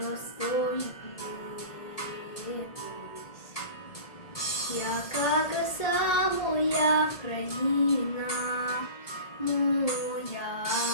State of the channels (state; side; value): late; right; 1.8 ms